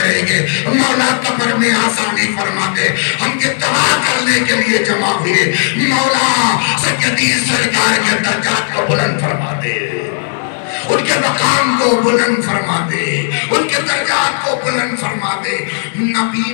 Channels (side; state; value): right; silent; digital silence